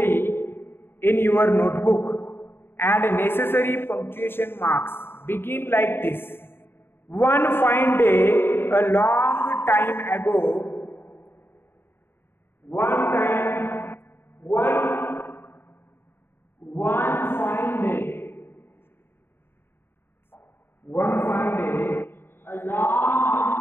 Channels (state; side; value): late; right; 0.11 ms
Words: in your notebook. Add necessary punctuation marks. Begin like this. One fine day, a long time ago. One fine day. One fine day, a long